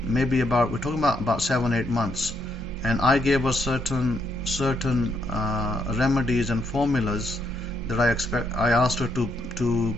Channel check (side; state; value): both; normal; correlation 0.75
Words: Maybe we're talking about 7-8 months, and I gave her certain remedies and formulas that I asked her to do,